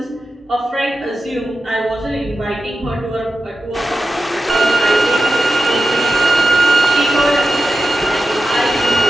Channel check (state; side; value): normal; both; correlation 0.90